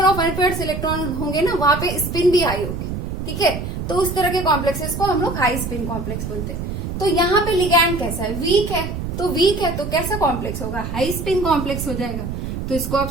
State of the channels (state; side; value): noise; right; rumble, 5 dB below the sound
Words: of unpaired electron होंगे ना, वहां पे स्पिन भी हाई होगी। ठीक है, तो उस तरह के कॉम्प्लेक्सेस को हम लोग हाई स्पिन कॉम्प्लेक्स बोलते हैं। तो यहाँ पे लिगैंड कैसा है, वीक है, तो वीक है तो कैसा कॉम्प्लेक्स होगा, हाई स्पिन कॉम्प्लेक्स हो जाएगा। तो इसको आप